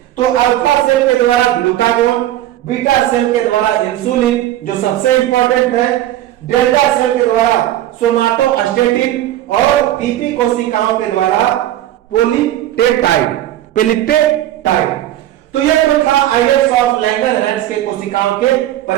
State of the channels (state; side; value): quieter; left; 13.4 dB